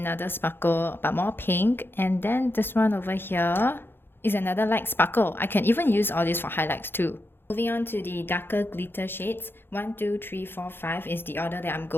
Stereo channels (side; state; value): right; late; 0.10 ms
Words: sparkle, but more pink. And then this one over here is another light sparkle. I can even use all this for highlights too. Moving on to the darker glitter shades. 1, 2, 3, 4, 5 is the order that I'm